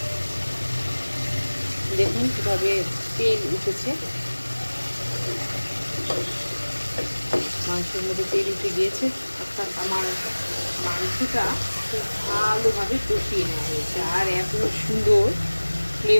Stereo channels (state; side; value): inverted; both; correlation -1.00